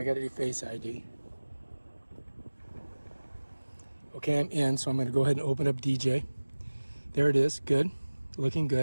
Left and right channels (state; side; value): inverted; both; correlation -1.00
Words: got to do Face ID. Okay, I'm in, so I'm going to go ahead and open up DJ. There it is. Good. Looking